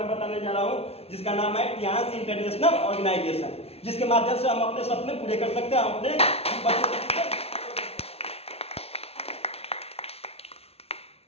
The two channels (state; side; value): late; right; 0.29 ms